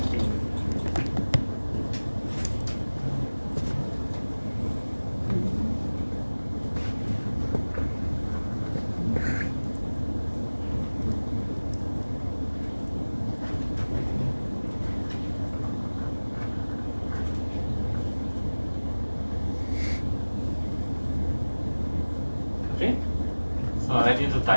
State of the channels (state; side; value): inverted; both; correlation -1.00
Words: So I need to